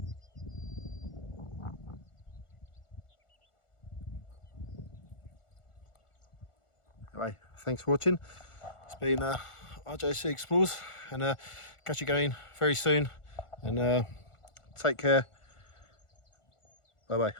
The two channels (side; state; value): right; late; 1.4 ms